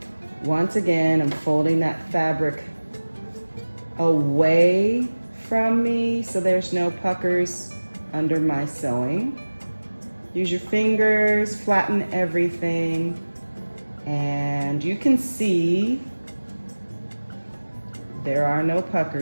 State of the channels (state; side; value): inverted; both; correlation -1.00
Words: once again, I'm folding that fabric away from me so there's no puckers under my sewing. Use your fingers, flatten everything, and you can see there are no